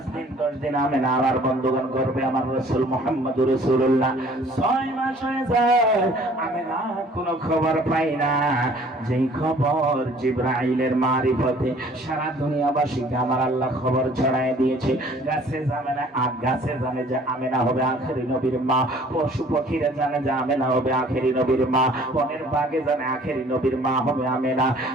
দিন 10 দিন আমিনা আমার বন্ধুগণ গর্বে আমার রাসূল মুহাম্মদুর রাসূলুল্লাহ 6 মাস হয়ে যায়। আমিনা কোনো খবর পাই না। যেই খবর জিবরাইলের মারিফতে সারা দুনিয়াবাসীকে আমার আল্লাহ খবর ছড়ায় দিয়েছে। গাছে জানে না, গাছে জানে যে আমিনা হবে আখেরি নবীর মা, পশু পাখিরা জানে যে আমিনা হবে আখেরি নবীর মা, বনের বাগে জানে আখেরি নবীর মা হবে আমেনা।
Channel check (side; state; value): both; normal; correlation 0.54